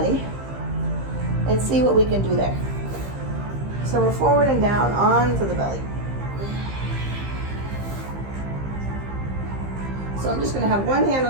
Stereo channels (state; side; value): late; left; 15 ms